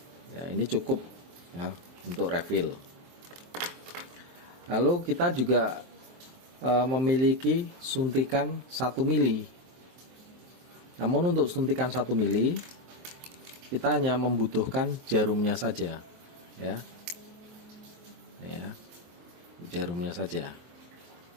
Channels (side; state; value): left; late; 23 ms